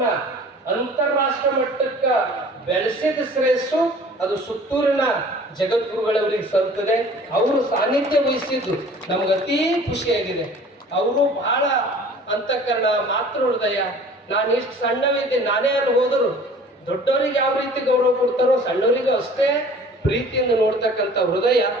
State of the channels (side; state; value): both; normal; correlation 0.48